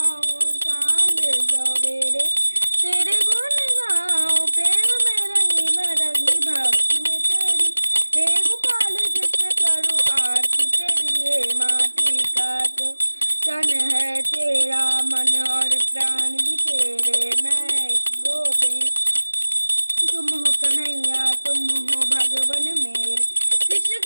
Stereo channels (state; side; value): inverted; both; correlation -1.00